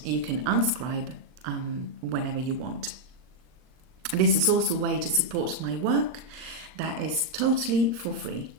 you can unscribe whenever you want. This is also a way to support my work that is totally for free.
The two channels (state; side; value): late; left; 39 ms